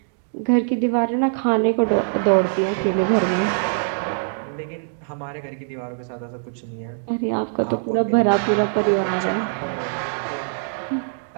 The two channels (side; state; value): left; silent; digital silence